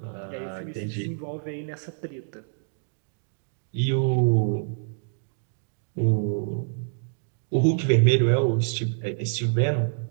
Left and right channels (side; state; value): left; silent; digital silence